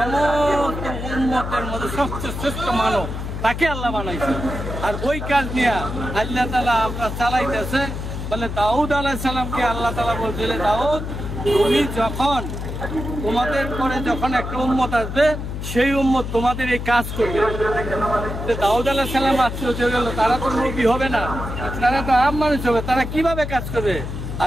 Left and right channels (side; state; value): left; noise; hum, 6 dB below the sound